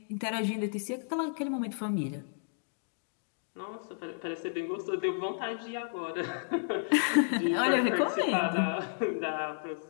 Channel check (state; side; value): silent; right; digital silence